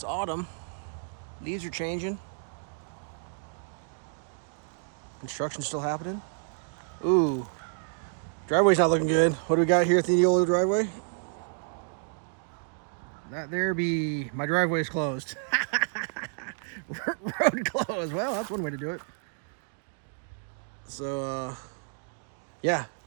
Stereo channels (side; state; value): left; silent; digital silence